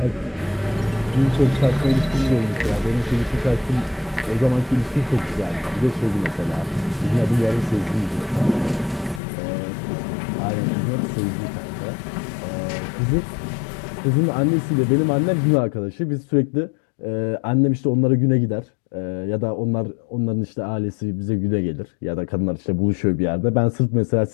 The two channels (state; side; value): drops out; right; at 9.2 s